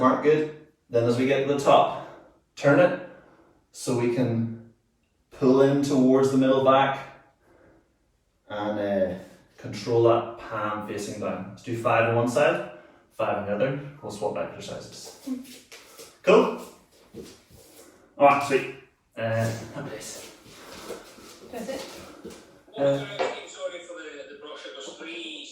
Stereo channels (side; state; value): both; identical; correlation 1.00